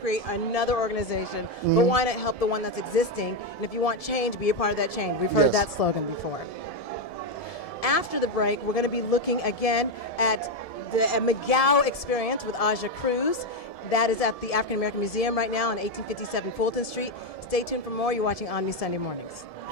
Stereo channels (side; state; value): right; late; 1.7 ms